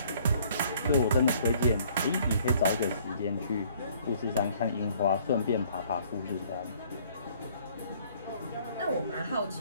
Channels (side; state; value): both; inverted; correlation -0.59